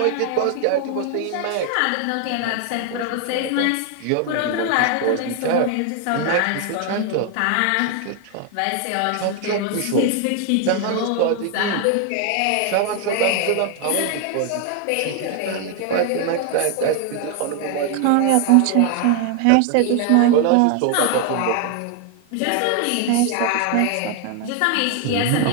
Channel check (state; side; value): different; both; correlation 0.01